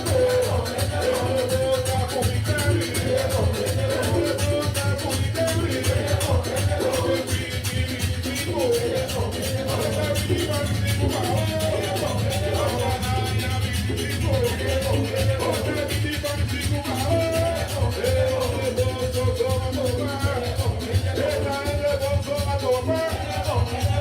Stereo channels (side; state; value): both; identical; correlation 1.00